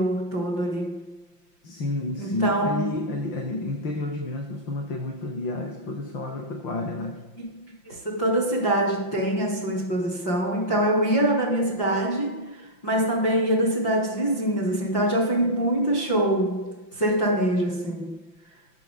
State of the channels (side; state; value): right; late; 5.8 ms